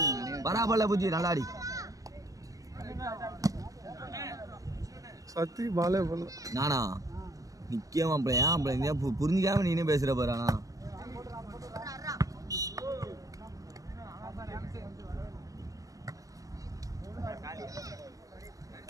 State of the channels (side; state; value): left; late; 0.16 ms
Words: பராபல புஜி நல்லாடி சத்தி பாலே பண்ண நானா நிக்கமா அப்படி ஏன் அப்படி புரிஞ்சுக்காம நீனே பேசுற பாரானா